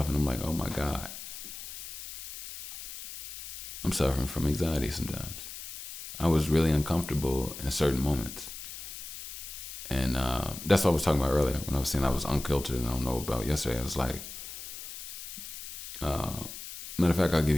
and I'm like, oh my God. I'm suffering from anxiety sometimes. I was really uncomfortable in certain moments. And that's what I was talking about earlier when I was saying I was uncultured and I don't know about yesterday. I was like, matter of fact, I'll give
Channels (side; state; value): left; noise; hiss, 11 dB below the sound